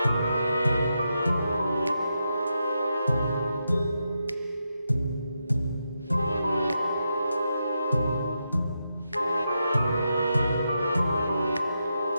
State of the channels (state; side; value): inverted; both; correlation -0.85